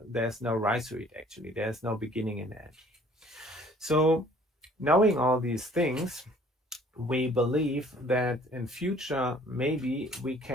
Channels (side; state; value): both; normal; correlation 0.55